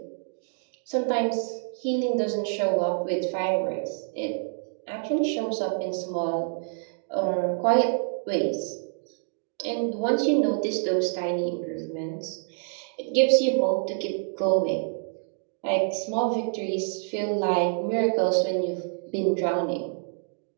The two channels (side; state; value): left; silent; digital silence